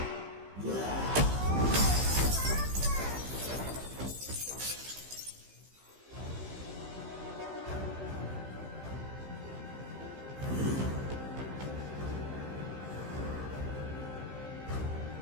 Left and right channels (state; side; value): late; left; 15 ms